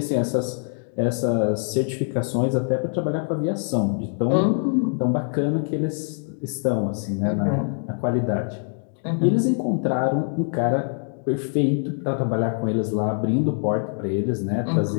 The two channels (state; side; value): silent; right; 63 dB below the other